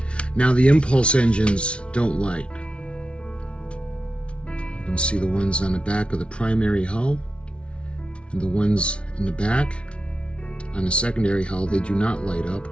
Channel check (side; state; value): right; late; 0.059 ms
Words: Now the impulse engines don't light. You can see the ones on the back of the primary hull and the ones in the back on the secondary hull, they do not light up.